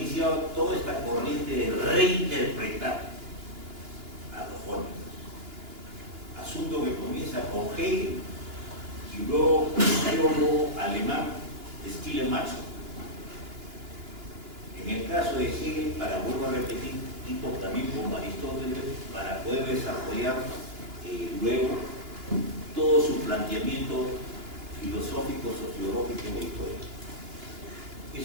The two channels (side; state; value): left; late; 2.9 ms